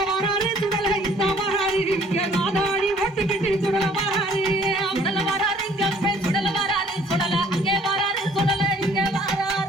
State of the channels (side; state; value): both; normal; correlation 0.57